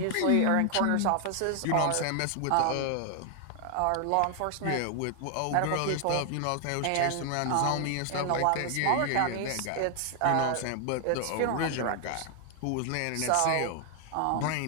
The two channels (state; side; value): different; both; correlation 0.00